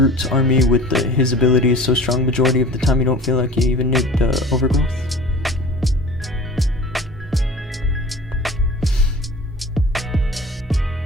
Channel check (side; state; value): both; normal; correlation 0.41